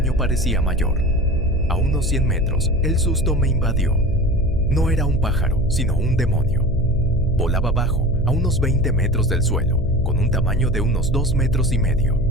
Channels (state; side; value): noise; left; hum, 10 dB below the sound